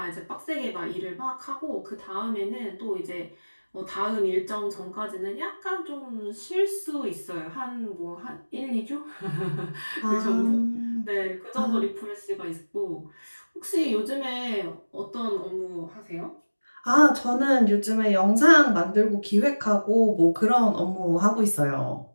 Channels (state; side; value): inverted; both; correlation -1.00